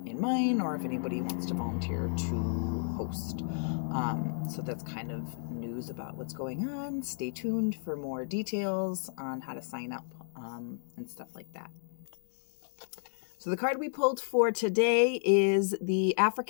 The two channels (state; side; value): silent; right; digital silence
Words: in mine, or if anybody wants to volunteer to host. So that's kind of news about what's going on. Stay tuned for more details on how to sign up, and stuff like that. So the card we pulled for today is the